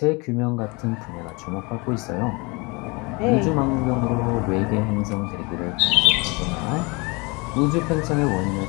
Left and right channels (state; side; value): quieter; right; 27.6 dB